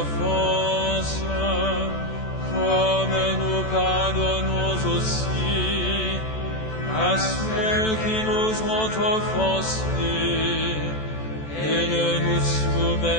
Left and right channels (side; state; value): right; late; 14 ms